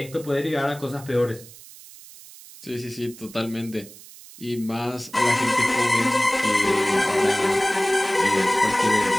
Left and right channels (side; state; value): right; noise; hiss, 19 dB below the sound